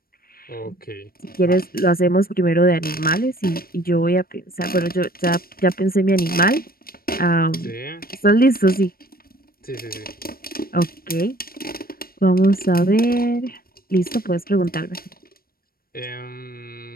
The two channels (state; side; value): late; right; 0.43 ms